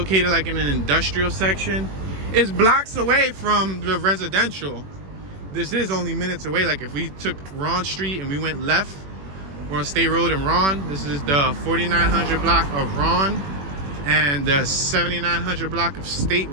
like in an industrial section. It's blocks away from the residential. This is only minutes away. Like if we took Ron Street and we went left, we're on State Road in Ron. This is the 4900 block of Ron and the 7900 block of State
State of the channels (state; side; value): late; left; 21 ms